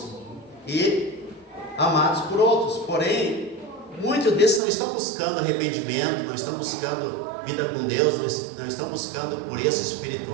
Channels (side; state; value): left; drops out; at 4.6 s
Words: e amados por outros. Porém, muitos desses não estão buscando arrependimento, não estão buscando vida com Deus, não estão buscando pureza